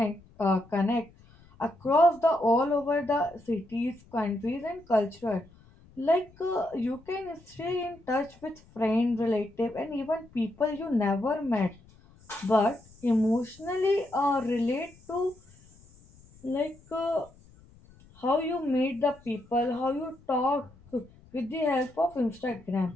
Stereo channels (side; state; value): left; noise; rumble, 26 dB below the sound